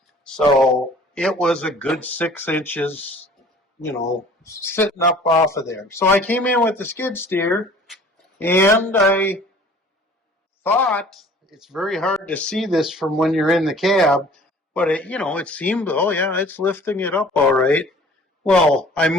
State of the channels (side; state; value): both; normal; correlation 0.49